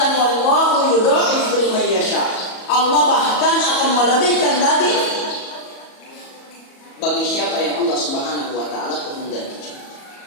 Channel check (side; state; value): right; late; 37 ms